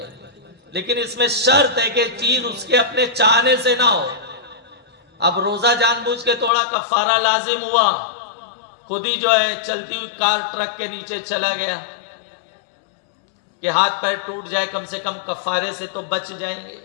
گی. لیکن اس میں شرط ہے کہ چیز اس کے اپنے چاہنے سے نہ ہو. اب روزہ جان بوجھ کے توڑا, کفارہ لازم ہوا, خود ہی جو ہے چلتی ہوئی کار ٹرک کے نیچے چلا گیا کہ ہاتھ پیر ٹوٹ جائے, کم سے کم کفارے سے تو بچ جائیں گے.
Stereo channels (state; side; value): drops out; right; at 6.5 s